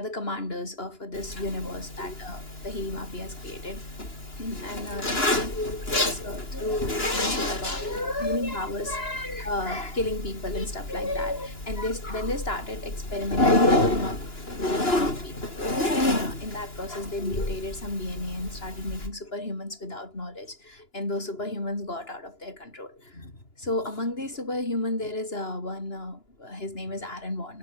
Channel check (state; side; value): late; right; 2.9 ms